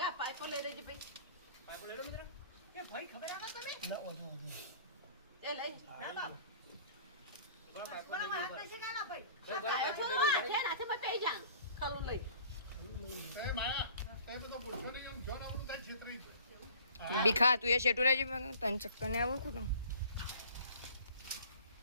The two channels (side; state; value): both; inverted; correlation -0.49